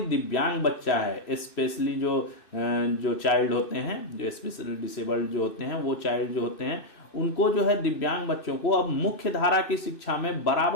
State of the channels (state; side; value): late; right; 2.6 ms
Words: दिव्यांग बच्चा है, स्पेशली जो चाइल्ड होते हैं, जो स्पेशली डिसेबल्ड जो होते हैं, वो चाइल्ड जो होते हैं, उनको जो है दिव्यांग बच्चों को अब मुख्य धारा की शिक्षा में